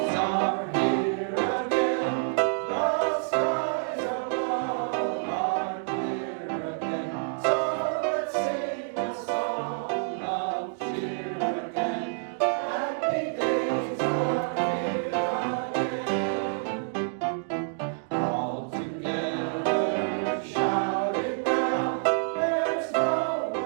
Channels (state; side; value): silent; left; digital silence